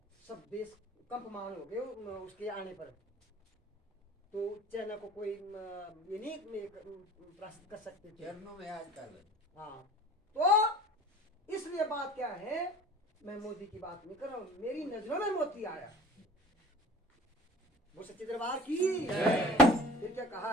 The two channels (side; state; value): both; normal; correlation 0.44